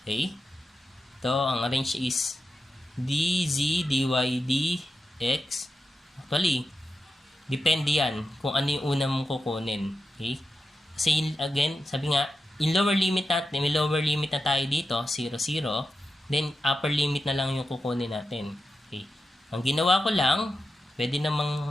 Okay? Ito, ang arrange is dz, dy, dx. Actually, depende yan kung ano yung una mong kukunin. Okay? Kasi, again, sabi nga, yung lower limit natin, may lower limit na tayo dito, 0, 0. Then, upper limit na lang yung kukunin natin. Okay. Ang ginawa ko lang, pwede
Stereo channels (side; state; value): both; normal; correlation 0.90